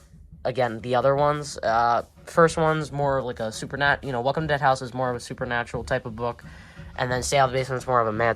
again, the other ones. First one's more like a supernatural, Welcome to Dead House is more of a supernatural type of book. And then Stay Out of the Basement is more of a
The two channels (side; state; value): both; identical; correlation 1.00